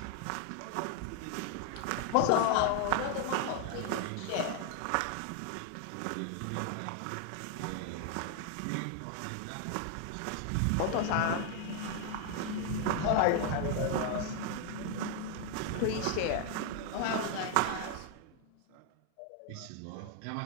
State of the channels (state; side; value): different; both; correlation 0.00